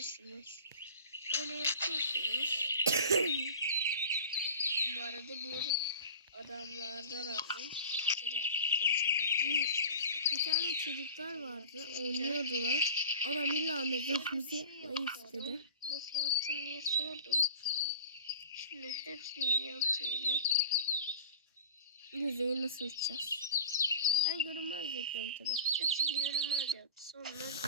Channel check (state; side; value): inverted; both; correlation -0.36